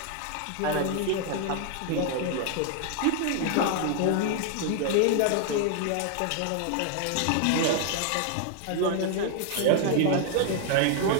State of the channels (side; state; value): both; different; correlation 0.00